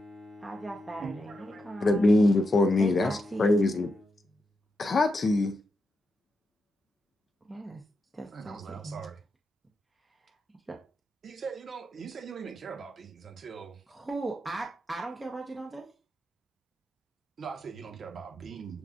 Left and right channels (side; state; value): both; normal; correlation 0.85